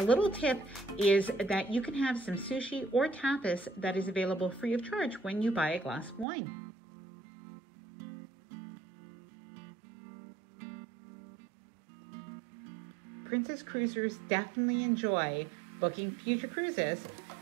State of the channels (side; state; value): left; drops out; at 6.2 s